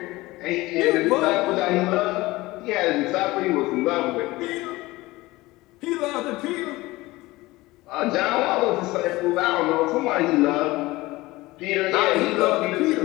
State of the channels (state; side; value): quieter; right; 19.8 dB